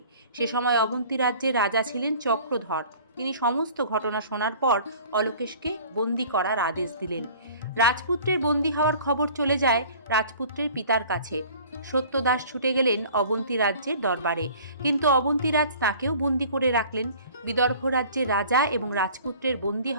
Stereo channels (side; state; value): both; inverted; correlation -0.48